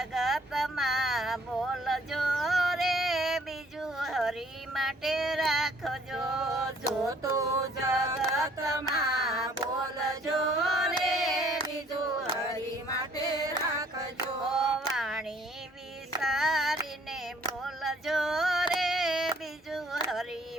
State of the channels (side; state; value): both; normal; correlation 0.60